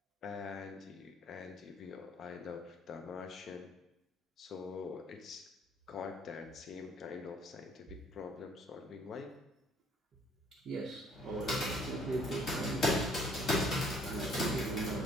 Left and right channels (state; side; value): normal; both; correlation 0.60